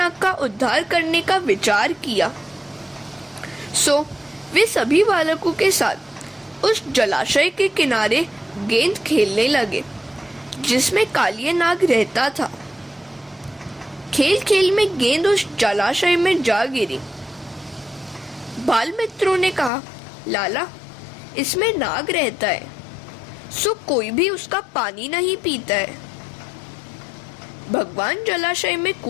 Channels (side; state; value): right; drops out; at 19.7 s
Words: का उद्धार करने का विचार किया, सो वे सभी बालकों के साथ उस जलाशय के किनारे गेंद खेलने लगे जिसमें कालिया नाग रहता था। खेल खेल में गेंद उस जलाशय में जा गिरी। बाल मित्रों ने कहा, लाला, इसमें नाग रहता है, सो कोई भी उसका पानी नहीं पीता है। भगवान जलाशय में